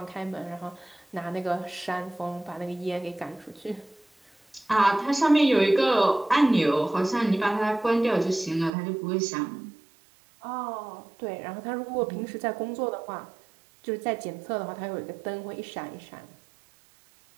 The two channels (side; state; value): left; drops out; at 8.7 s